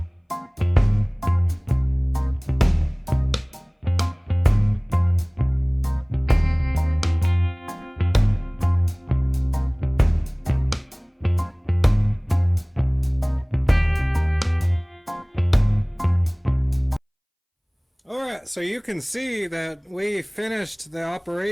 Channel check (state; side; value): identical; both; correlation 1.00